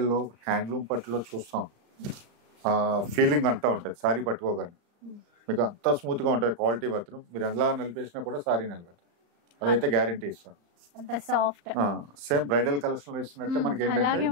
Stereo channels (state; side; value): late; left; 35 ms